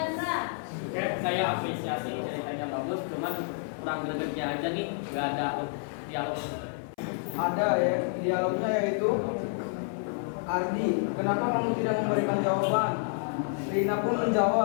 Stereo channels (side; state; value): right; silent; 58 dB below the other